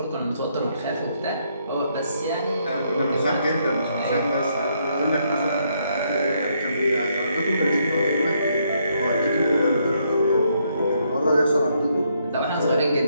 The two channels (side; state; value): both; inverted; correlation -0.74